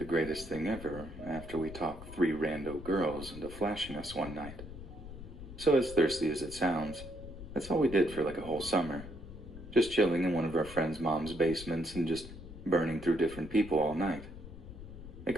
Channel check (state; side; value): noise; left; rumble, 13 dB below the sound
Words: greatest thing ever after we talked 3 rando girls into flashing us one night. So as thirsty as it sounds, that's all we did for like a whole summer. Just chilling in one of our friends' mom's basements and just burning through different people all night. It